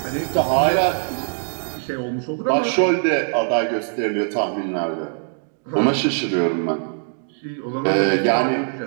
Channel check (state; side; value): silent; left; digital silence